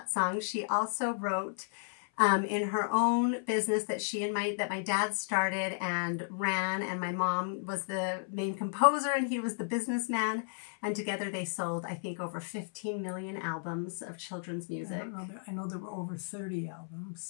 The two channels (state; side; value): silent; right; 56 dB below the other